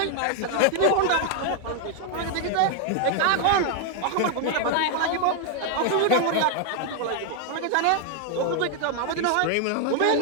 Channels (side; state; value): both; different; correlation 0.00